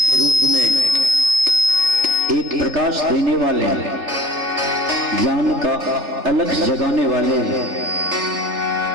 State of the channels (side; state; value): left; late; 3.7 ms